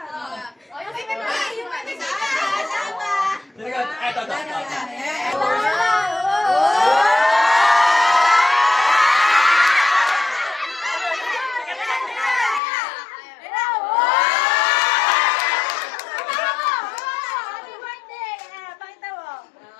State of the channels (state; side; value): drops out; right; at 12.6 s